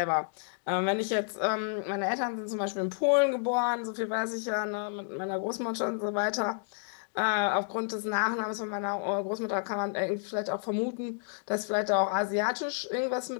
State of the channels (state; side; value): silent; right; digital silence